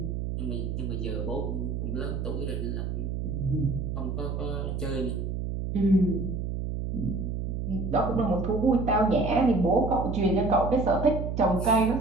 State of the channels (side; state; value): right; noise; hum, 3 dB below the sound